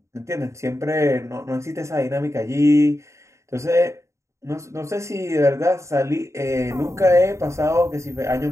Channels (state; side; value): late; left; 0.14 ms